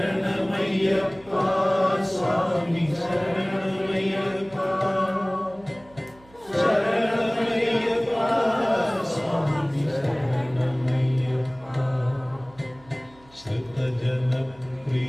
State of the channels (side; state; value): right; noise; hum, 26 dB below the sound